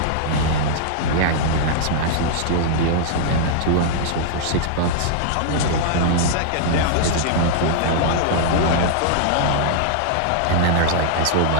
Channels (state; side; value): different; both; correlation -0.01